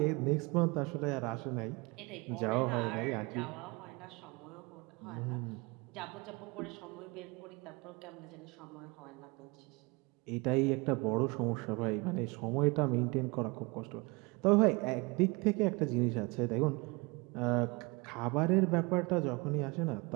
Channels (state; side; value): quieter; left; 26.7 dB